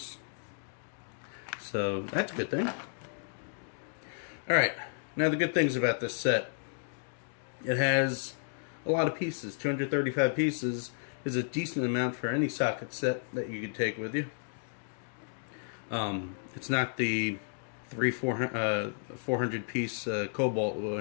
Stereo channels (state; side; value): silent; right; digital silence